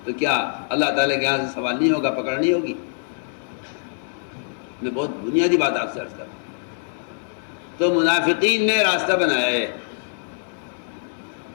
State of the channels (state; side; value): silent; right; digital silence